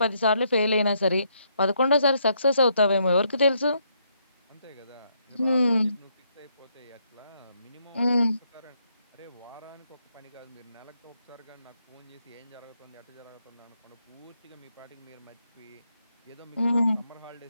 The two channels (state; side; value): inverted; both; correlation -0.74